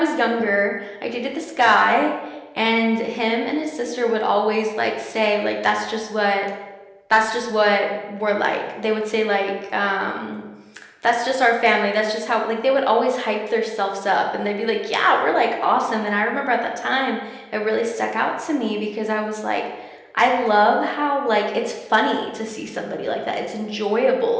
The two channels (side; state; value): both; identical; correlation 1.00